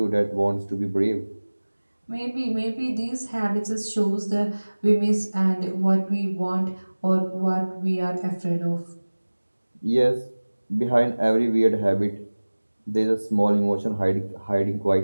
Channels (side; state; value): both; inverted; correlation -1.00